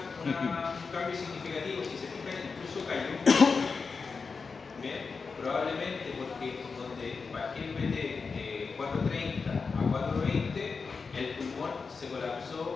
cambio significativo. Si se fijan, incluso cayó un poco. Bien, probablemente porque donde bajé el BT de 430 a 420, el pulmón se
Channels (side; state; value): right; quieter; 4.9 dB